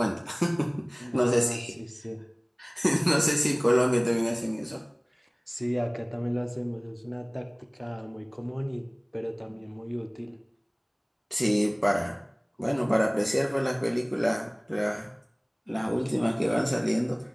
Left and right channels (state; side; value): identical; both; correlation 1.00